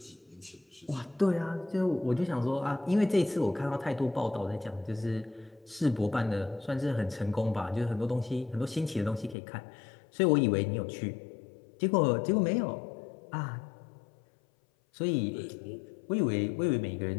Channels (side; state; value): right; drops out; at 9.3 s